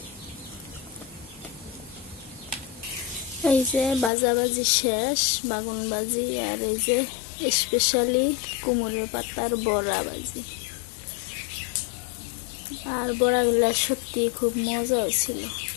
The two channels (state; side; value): drops out; right; at 4.1 s